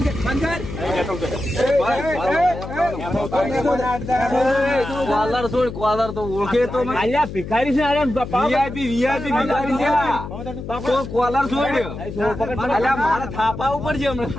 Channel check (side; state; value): left; noise; hum, 9 dB below the sound